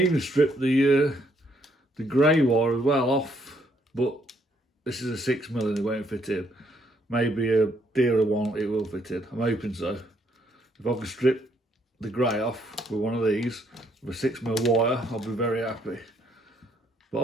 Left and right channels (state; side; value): normal; both; correlation 0.70